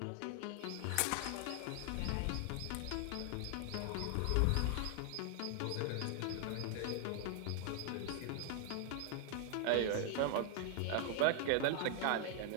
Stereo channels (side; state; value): both; different; correlation 0.00